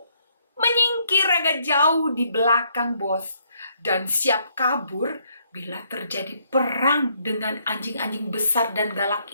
menyingkir agak jauh di belakang bos dan siap kabur bila terjadi perang dengan anjing-anjing besar dan galak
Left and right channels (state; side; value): inverted; both; correlation -0.71